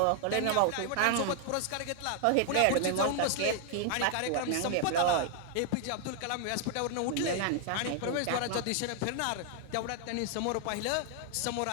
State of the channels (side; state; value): both; different; correlation 0.00